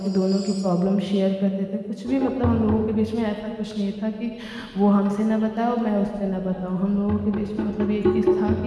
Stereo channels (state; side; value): identical; both; correlation 1.00